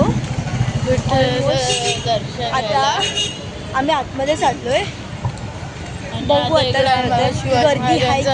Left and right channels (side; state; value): both; identical; correlation 1.00